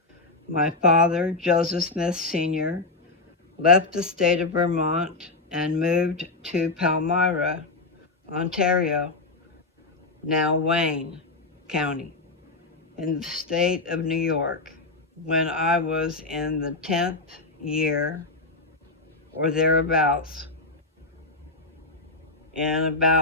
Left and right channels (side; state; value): right; quieter; 3.4 dB